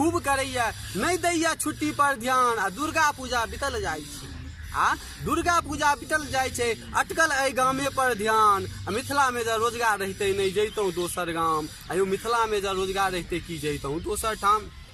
करैया नहीं दैया छुट्टी पर ध्यान। आ दुर्गा पूजा बीतल जाइ छै, आ दुर्गा पूजा बीतल जाइ छै, अटकल एहि गामे पर ध्यान। मिथिला में जब रोजगार रहते नहीं जैतौं दोसर गाम। आयो मिथिला में जब रोजगार रहते कि जैतौं दोसर ठाम।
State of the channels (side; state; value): both; identical; correlation 1.00